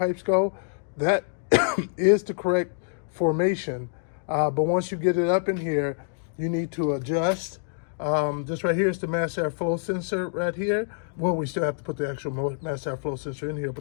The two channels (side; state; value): right; silent; digital silence